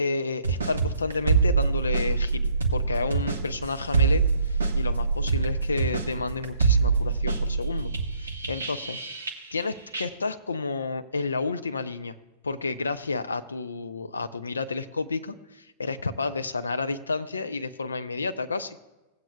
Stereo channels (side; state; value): both; inverted; correlation -0.67